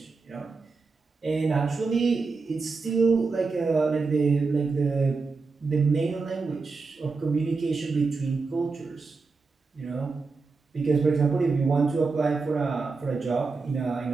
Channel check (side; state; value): left; quieter; 4.3 dB